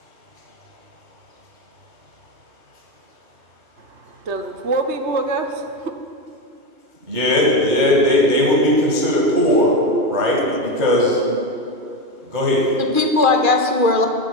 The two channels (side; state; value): left; late; 2.4 ms